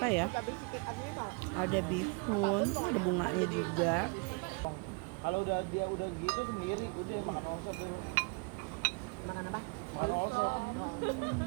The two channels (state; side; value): quieter; left; 33.0 dB